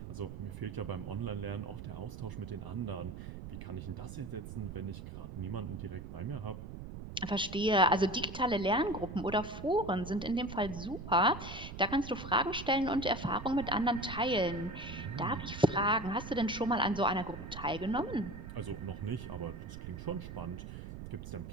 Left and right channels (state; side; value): noise; right; rumble, 10 dB below the sound